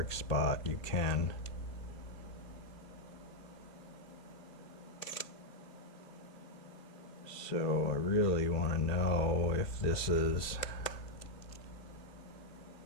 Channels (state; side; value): late; right; 2.7 ms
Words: spot, you can. So I really want to know if this is